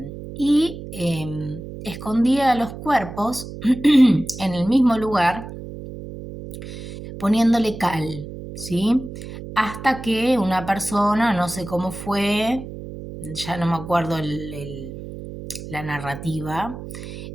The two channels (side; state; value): right; noise; hum, 11 dB below the sound